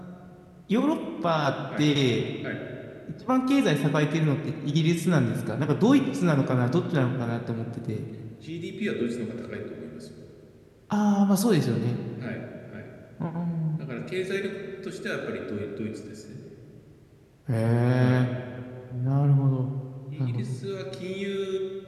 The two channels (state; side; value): identical; both; correlation 1.00